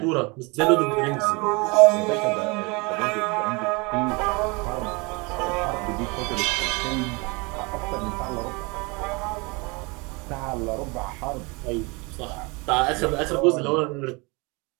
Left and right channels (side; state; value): left; quieter; 27.8 dB